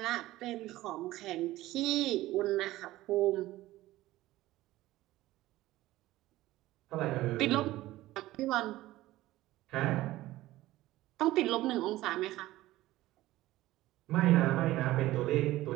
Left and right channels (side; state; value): left; quieter; 16.5 dB